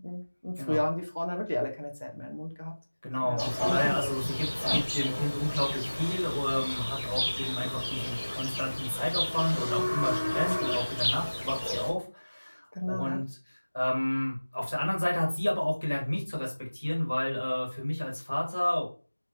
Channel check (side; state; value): both; inverted; correlation -1.00